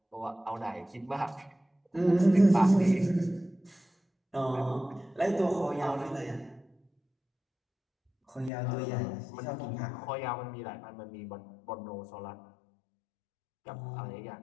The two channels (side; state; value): right; drops out; at 8.5 s